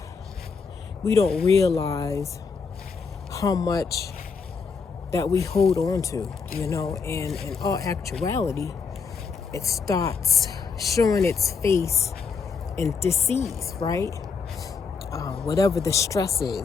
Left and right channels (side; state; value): right; quieter; 5.4 dB